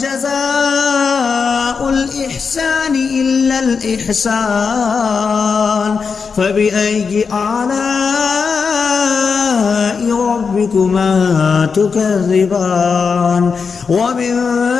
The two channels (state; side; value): quieter; right; 5.5 dB